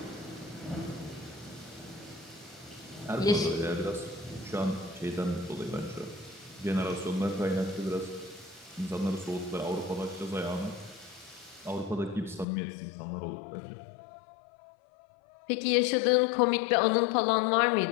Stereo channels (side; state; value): right; drops out; at 12.5 s